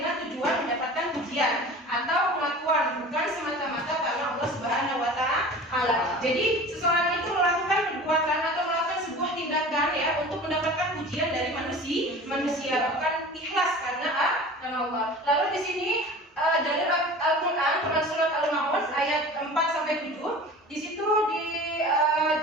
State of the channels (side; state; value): both; normal; correlation 0.39